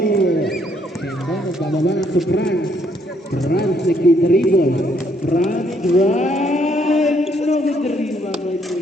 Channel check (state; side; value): normal; both; correlation 0.70